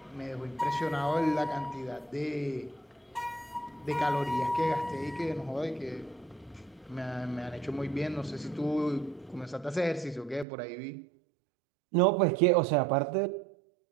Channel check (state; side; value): drops out; left; at 10.5 s